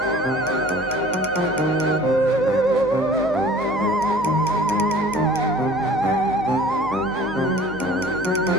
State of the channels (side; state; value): right; noise; hum, 17 dB below the sound